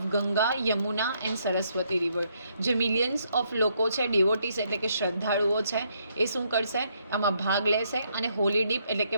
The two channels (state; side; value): inverted; both; correlation -0.73